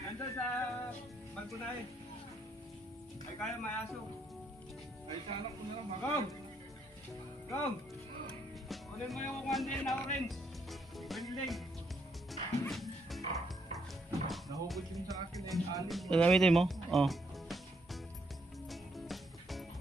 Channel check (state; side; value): normal; both; correlation 0.73